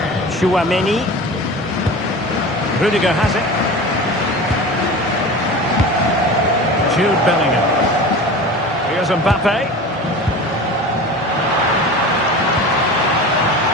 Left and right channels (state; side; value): normal; both; correlation 0.34